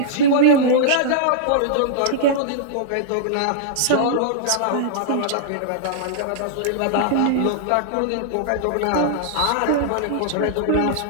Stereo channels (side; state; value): both; different; correlation -0.02